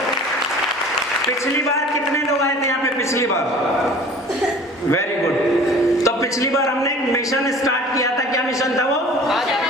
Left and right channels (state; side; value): normal; both; correlation 0.45